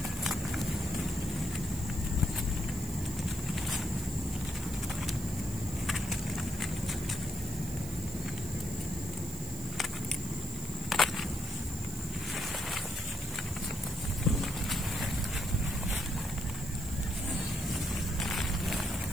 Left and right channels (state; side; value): noise; right; hiss, 11 dB below the sound